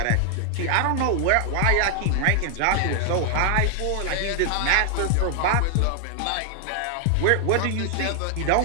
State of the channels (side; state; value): both; different; correlation 0.00